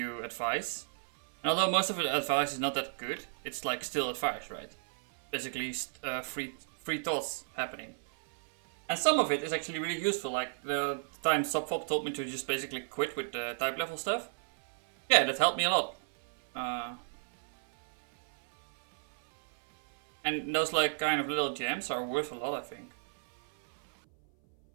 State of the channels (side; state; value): left; silent; 56 dB below the other